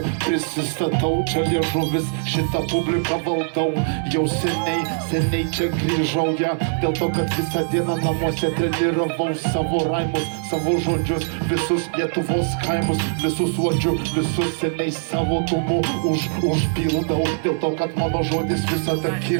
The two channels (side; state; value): left; silent; 64 dB below the other